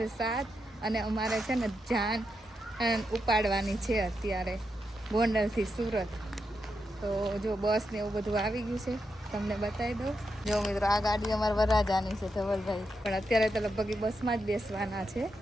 7 અને અમારે છે ને જાન ઉપાડવાની છે અત્યારે ગોંડલથી સુરત. તો જો બસ ને એવું બધું આવી ગયું છે, તમને બતાવી દઉં. જો મિત્રો, આ ગાડી અમારા વરરાજાની છે ધવલભાઈ, પણ અત્યારે તો લગભગ બસમાં જ બેસવાના છે,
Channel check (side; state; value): both; normal; correlation 0.85